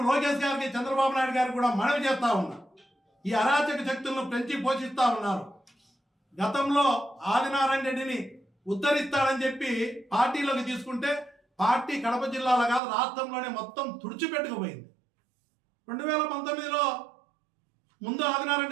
లోకేష్ గారికి, చంద్రబాబు నాయుడు గారికి కూడా మనవి చేస్తా ఉన్నా. ఈ అరాచక శక్తులను పెంచి పోషిస్తా ఉన్నారు. గతంలో ఆదినారాయణ రెడ్డిని ఉద్ధరిస్తాడని చెప్పి పార్టీలోకి తీసుకుంటే పార్టీ కడప జిల్లాలో కాదు రాష్ట్రంలోనే మొత్తం తుడిచిపెట్టుకుపోయింది. 2019లో ముందు ఆదినారాయణ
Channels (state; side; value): drops out; left; at 12.8 s